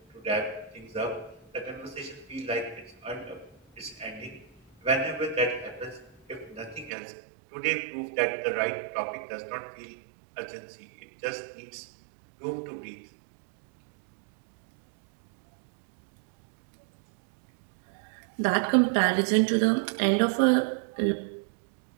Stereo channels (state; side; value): drops out; left; at 6.9 s